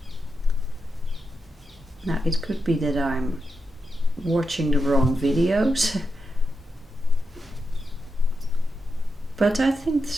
Now, it could be that I'm watching the wrong videos, but I think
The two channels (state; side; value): normal; both; correlation 0.86